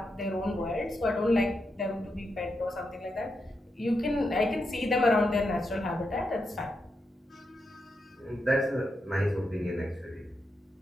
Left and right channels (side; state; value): both; normal; correlation 0.85